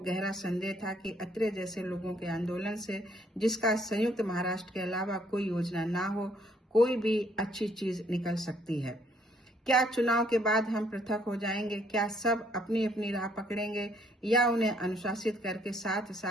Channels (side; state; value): both; normal; correlation 0.66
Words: संदेह था कि अत्रे जैसे लोगों के आंदोलन से, जिसका संयुक्त महाराष्ट्र के अलावा कोई योजना ना हो, कोई भी अच्छी चीज निकल सकती है। क्या चुनाव के बाद हम पृथक हो जाएंगे? क्या सब अपनी अपनी राह पकड़ेंगे या उन्हें अनुशासित करके साथ